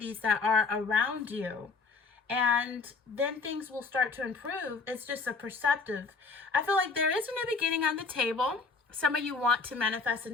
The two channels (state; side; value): quieter; right; 4.5 dB